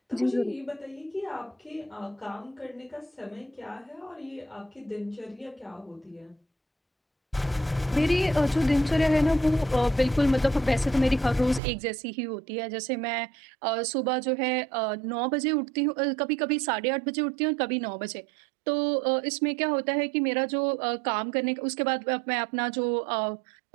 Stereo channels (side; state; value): left; drops out; at 11.6 s